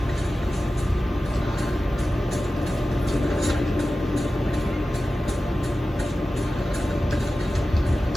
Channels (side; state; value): both; normal; correlation 0.94